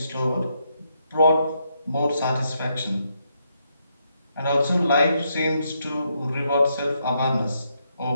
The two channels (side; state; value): both; inverted; correlation -0.78